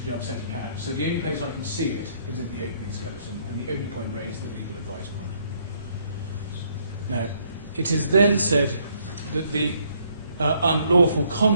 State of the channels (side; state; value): both; inverted; correlation -0.68